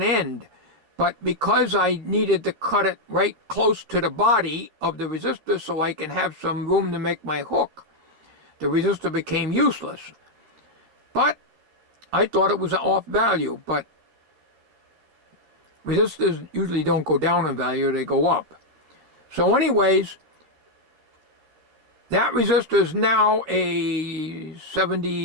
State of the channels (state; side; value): late; left; 13 ms